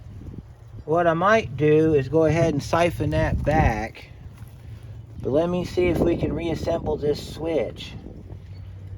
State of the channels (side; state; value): both; identical; correlation 1.00